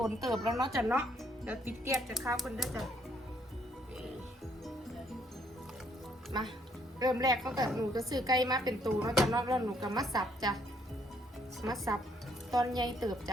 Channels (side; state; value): both; normal; correlation 0.68